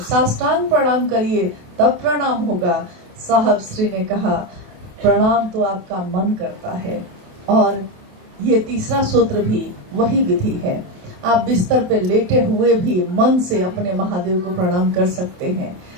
साष्टांग प्रणाम करिए तब प्रणाम होगा। साहब श्री ने कहा प्रणाम तो आपका मन करता है। और ये तीसरा सूत्र भी वही विधि है। आप बिस्तर पे लेटे हुए भी मन से अपने महादेव को प्रणाम कर सकते हैं।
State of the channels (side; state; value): left; late; 28 ms